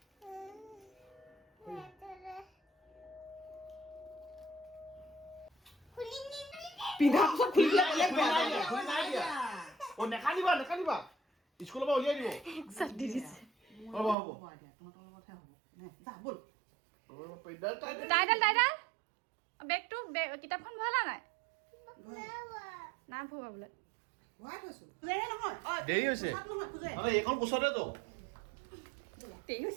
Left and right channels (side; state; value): left; drops out; at 14.2 s